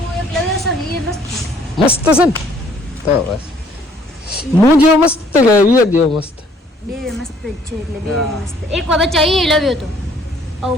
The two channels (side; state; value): both; normal; correlation 0.61